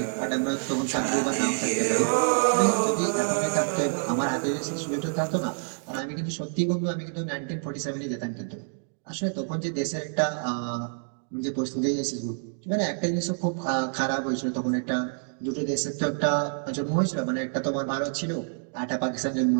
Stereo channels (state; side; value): silent; left; digital silence